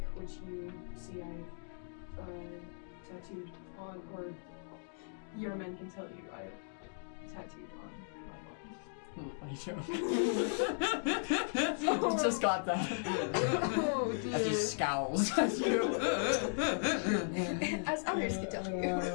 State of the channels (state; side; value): silent; right; digital silence